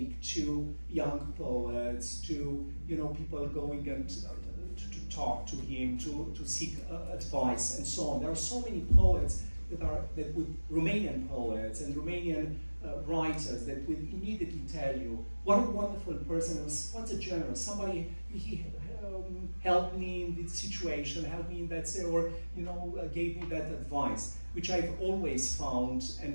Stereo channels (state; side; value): inverted; both; correlation -1.00